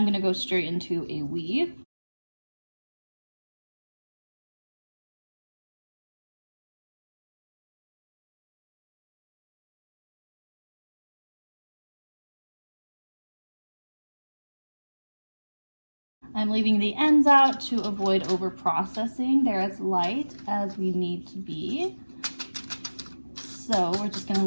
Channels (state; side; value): inverted; both; correlation -1.00